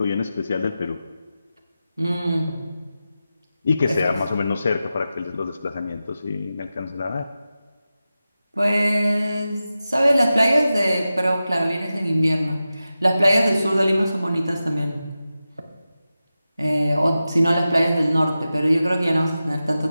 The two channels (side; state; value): both; inverted; correlation -0.93